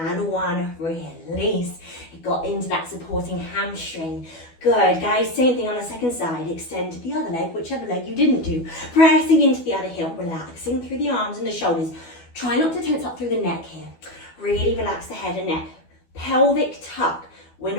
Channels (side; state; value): right; late; 12 ms